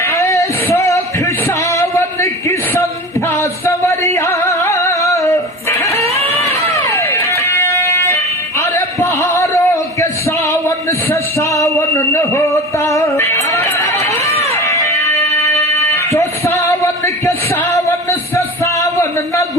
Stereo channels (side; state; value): both; normal; correlation 0.33